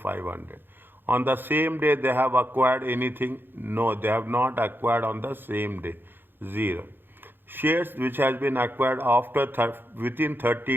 On the same day they have acquired anything? No, they have not acquired on the same day, 0. Shares which has been acquired after within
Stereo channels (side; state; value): left; late; 0.099 ms